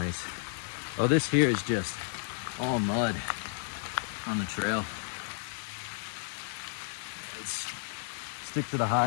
Oh, this here is just all mud on the trail. Let's stick to the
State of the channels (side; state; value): right; silent; 56 dB below the other